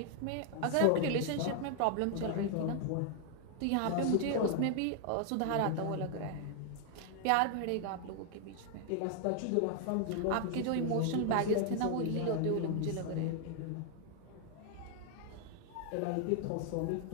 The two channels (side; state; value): both; different; correlation 0.00